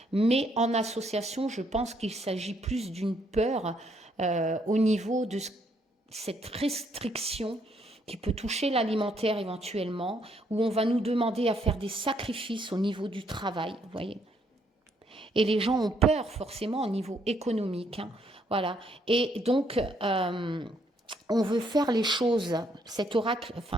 Mais en association, je pense qu'il s'agit plus d'une peur au niveau de cette restriction qui peut toucher l'alimentaire éventuellement, où on va nous demander à faire des sacrifices au niveau du travail, vous voyez. Et les gens ont peur forcément au niveau économique, hein. Voilà. Et donc, on veut faire les choses, cet oracle,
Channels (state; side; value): normal; both; correlation 0.71